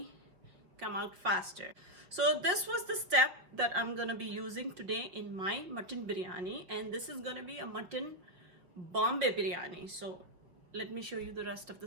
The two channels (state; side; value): late; left; 5.7 ms